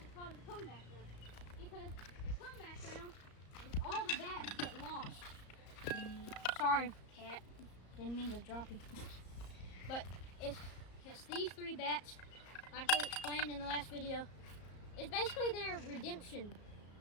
it called the comeback round? Because the comeback round is all the bats that lost. Sorry, cat. Didn't mean to drop you. But if it's these 3 bats, like we explained in the last video, it's basically their redemption.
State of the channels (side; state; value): right; late; 34 ms